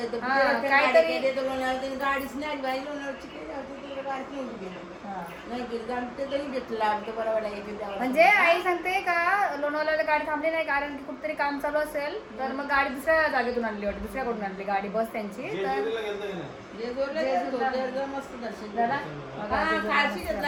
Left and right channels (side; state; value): both; identical; correlation 1.00